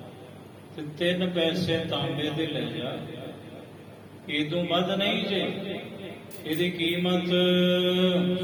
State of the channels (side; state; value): both; identical; correlation 1.00